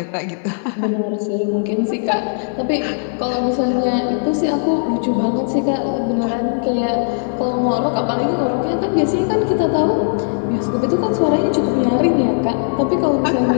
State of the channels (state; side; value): silent; right; digital silence